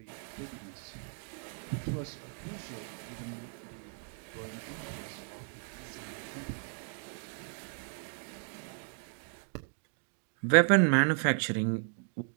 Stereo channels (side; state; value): left; silent; 54 dB below the other